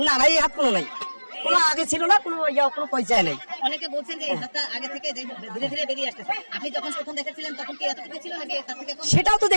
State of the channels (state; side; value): inverted; both; correlation -1.00